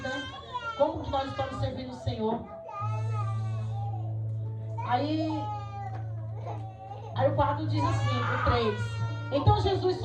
né? Como que nós estamos servindo o Senhor. Aí o 4 diz assim, o 3. Então Jesus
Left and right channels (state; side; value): identical; both; correlation 1.00